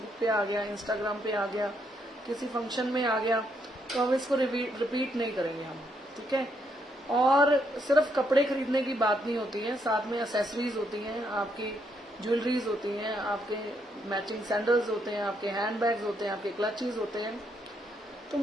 पे आ गया, इंस्टाग्राम पे आ गया, किसी फंक्शन में आ गया, तो हम इसको रिपीट नहीं करेंगे हम, ठीक है। और सिर्फ कपड़े खरीदने की बात नहीं होती है, साथ में एसेसरीज होती हैं, आपकी ज्वेलरीज होती हैं, आपके मैचिंग सैंडल्स होते हैं, आपके हैंड बैग्स होते हैं, आपके क्लचेस होते हैं। तो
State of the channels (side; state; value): both; normal; correlation 0.75